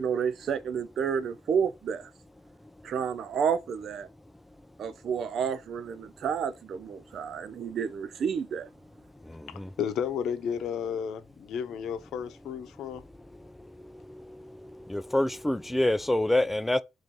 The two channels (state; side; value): normal; both; correlation 0.76